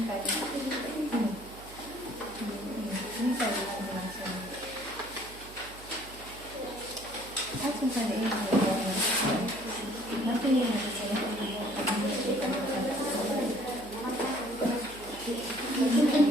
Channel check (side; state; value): right; noise; hum, 18 dB below the sound